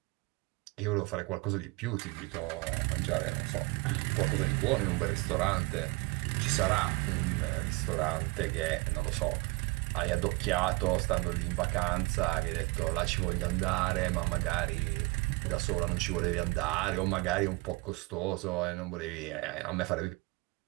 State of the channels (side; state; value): left; quieter; 24.6 dB